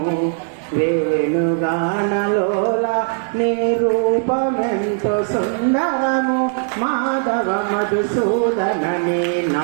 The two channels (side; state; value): left; silent; 67 dB below the other